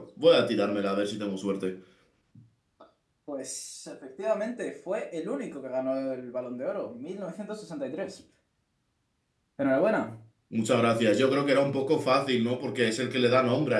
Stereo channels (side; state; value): both; identical; correlation 1.00